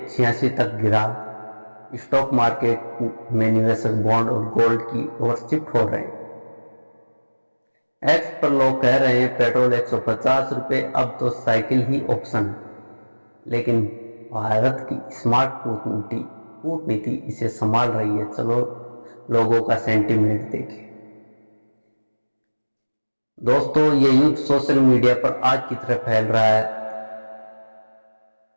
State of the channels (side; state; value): both; inverted; correlation -1.00